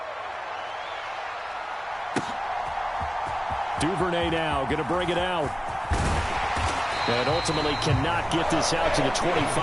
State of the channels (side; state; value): both; identical; correlation 1.00